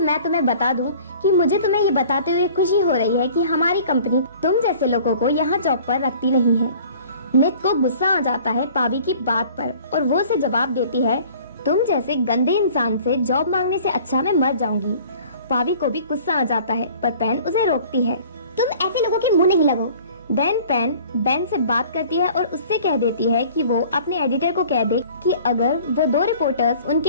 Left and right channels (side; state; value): both; inverted; correlation -0.49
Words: तुम्हें बता दूं कि मुझे तुम्हें ये बताते हुए खुशी हो रही है कि हमारी कंपनी तुम जैसे लोगों को यहाँ जॉब पर रखती नहीं है। नित को गुस्सा आ जाता है पावी की बात पर और वो उसे जवाब देती है, तुम जैसे गंदे इंसान से जॉब मांगने से अच्छा मैं मर जाऊंगी। पावी को भी गुस्सा आ जाता है पर पैन उसे रोकती है। तुम ऐसे लोगों के मुंह नहीं लगो। देन पेन बेन से बात करती है और उससे कह देती है कि वो अपने एडिटर को कह दे कि अगर वो 2 रिपोर्टर्स